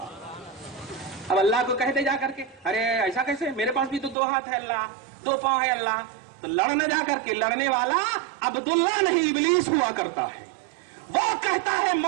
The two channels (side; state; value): left; drops out; at 4.2 s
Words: اب اللہ کو کہتے جا کر کے, ارے ایسا کیسے, میرے پاس بھی تو 2 ہاتھ ہے اللہ, 2 پاؤں ہے اللہ. تو لڑنے جا کر کے, لڑنے والا عبداللہ نہیں ابلیس ہوا کرتا ہے. وہ کہتا ہے